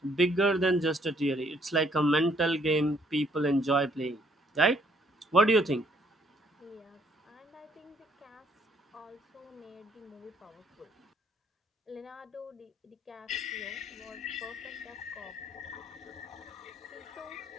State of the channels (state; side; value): normal; both; correlation 0.66